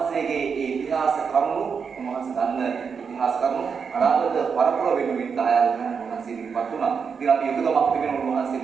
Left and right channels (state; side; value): quieter; left; 6.0 dB